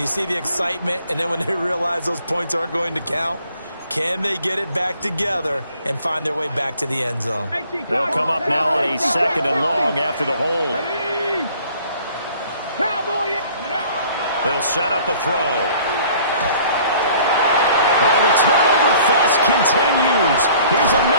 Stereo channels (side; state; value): both; inverted; correlation -0.54